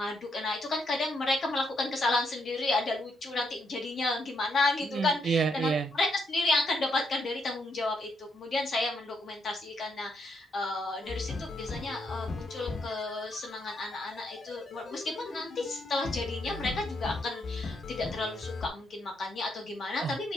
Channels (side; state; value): both; normal; correlation 0.76